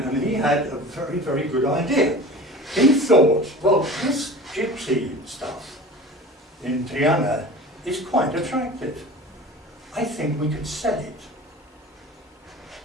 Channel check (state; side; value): normal; both; correlation 0.38